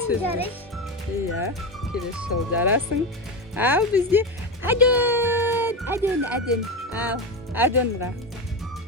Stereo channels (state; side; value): normal; both; correlation 0.17